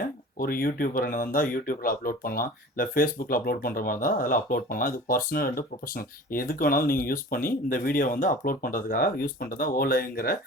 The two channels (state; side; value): normal; both; correlation 0.41